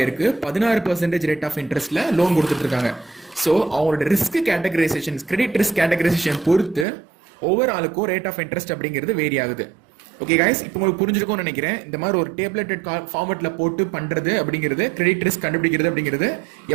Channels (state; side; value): drops out; left; at 6.9 s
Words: 16% ரேட் ஆஃப் இன்ட்ரெஸ்ட்ல லோன் கொடுத்துட்டு இருக்காங்க. ஸோ அவங்களோட risk categorisation, credit risk categorisation பொறுத்து ஒவ்வொரு ஆளுக்கும் ரேட் ஆஃப் இன்ட்ரெஸ்ட் அப்படிங்கிறது வேரி ஆகுது. ஓகே கைஸ், இப்போ உங்களுக்கு புரிஞ்சிருக்கும்னு நினைக்கிறேன். இந்த மாதிரி ஒரு டேப்லெட்டட் ஃபார்மேட்ல போட்டு பண்றது அப்படிங்கிறது, கிரெடிட் ரிஸ்க் கண்டுபிடிக்கிறது அப்படிங்கிறது